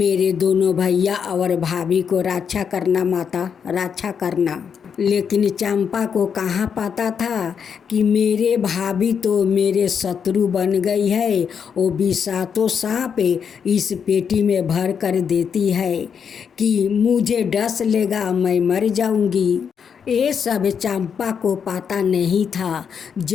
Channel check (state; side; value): quieter; right; 7.0 dB